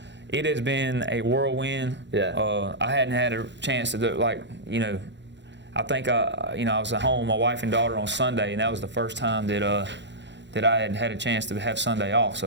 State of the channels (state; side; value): late; left; 0.52 ms